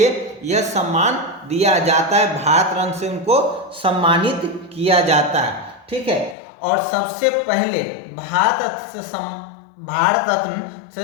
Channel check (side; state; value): right; drops out; at 6.4 s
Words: यह सम्मान दिया जाता है। भारत रत्न से उनको सम्मानित किया जाता है। ठीक है, और सबसे पहले भारत रत्न